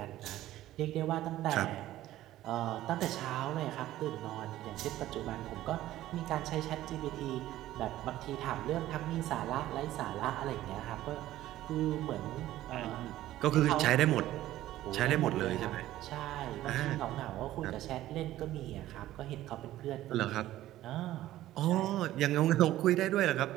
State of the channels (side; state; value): left; quieter; 14.5 dB